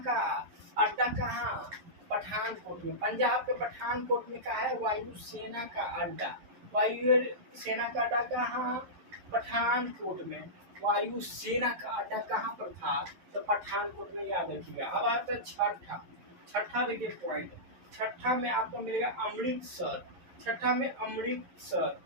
का अड्डा कहाँ, पठानकोट में। पंजाब के पठानकोट में क्या है, वायुसेना का अड्डा। वायु सेना का अड्डा कहाँ, पठानकोट में। वायु सेना का अड्डा कहाँ पर था, तो पठानकोट में, याद रखिएगा। अब आता है छठा देखिए पॉइंट। छठा में आपको मिलेगा अमृतसर। छठा में अमृतसर।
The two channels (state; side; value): late; left; 11 ms